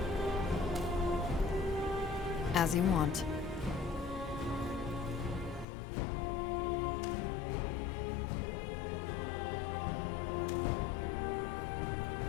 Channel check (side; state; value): right; drops out; at 5.7 s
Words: As you want.